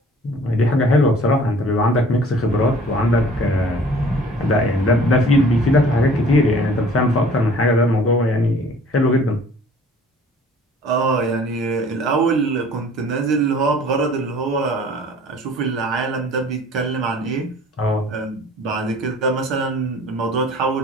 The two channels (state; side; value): normal; both; correlation 0.50